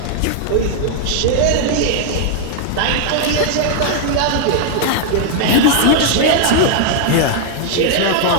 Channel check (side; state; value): both; different; correlation 0.00